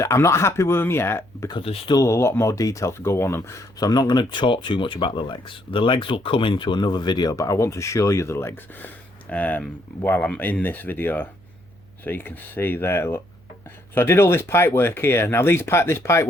I'm not happy with them yet because there's still a lot more detail to go on them. So I'm not going to talk too much about the legs. The legs will come into another video, but I want to show you the legs while I'm in this video, so you can see there. Look, So I did all this pipe work here. Now this pipe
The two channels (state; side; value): noise; right; hum, 27 dB below the sound